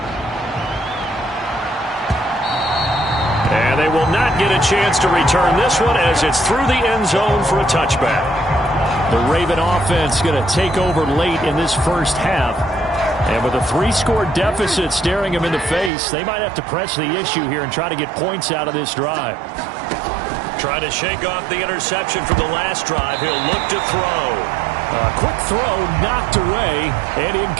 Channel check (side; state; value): left; drops out; at 15.9 s